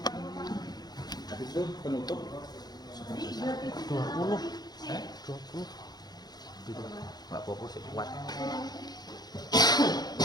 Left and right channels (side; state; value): right; late; 0.19 ms